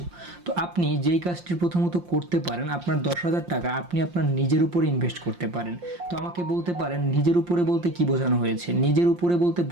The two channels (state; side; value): late; left; 5.7 ms